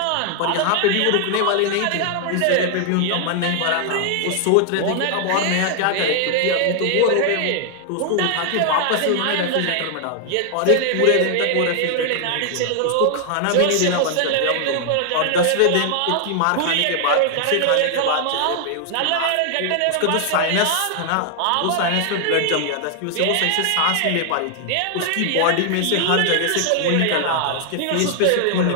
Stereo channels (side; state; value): both; different; correlation 0.00